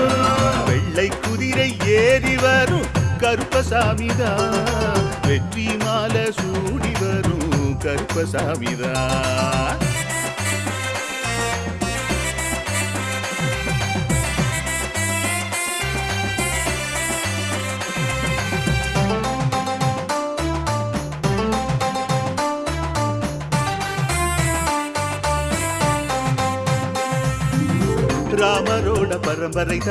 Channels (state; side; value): identical; both; correlation 1.00